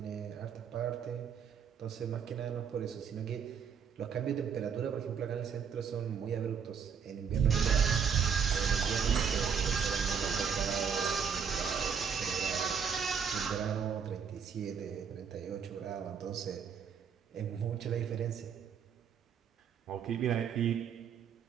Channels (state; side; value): quieter; left; 7.0 dB